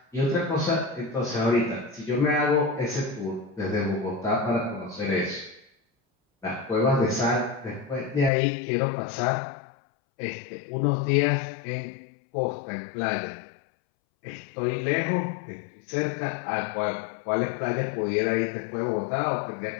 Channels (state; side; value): drops out; right; at 8.3 s